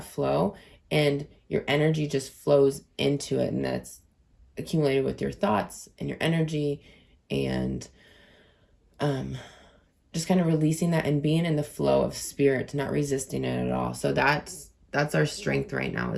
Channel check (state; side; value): identical; both; correlation 1.00